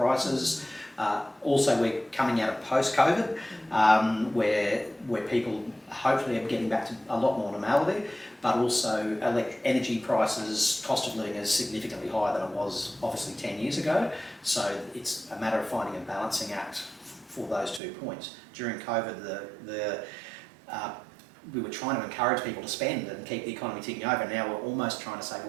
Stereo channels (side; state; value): left; drops out; at 17.8 s